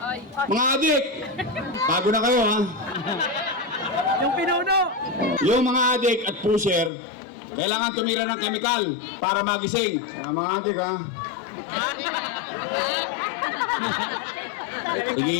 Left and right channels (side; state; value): right; drops out; at 6.9 s